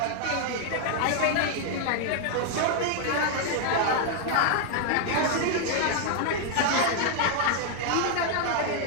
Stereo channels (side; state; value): both; different; correlation 0.00